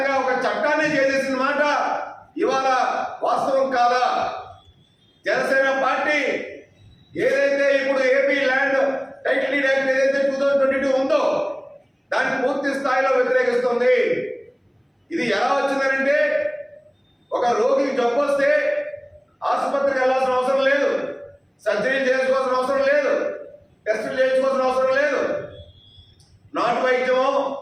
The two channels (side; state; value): both; identical; correlation 1.00